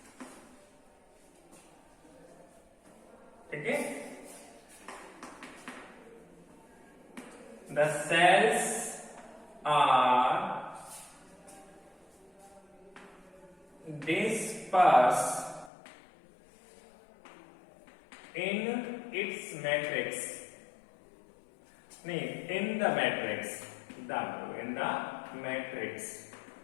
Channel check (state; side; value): drops out; right; at 15.7 s